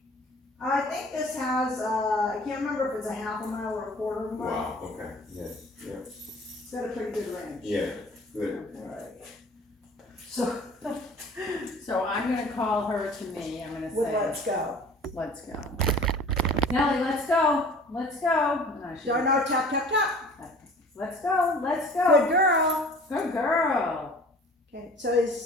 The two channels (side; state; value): both; normal; correlation 0.46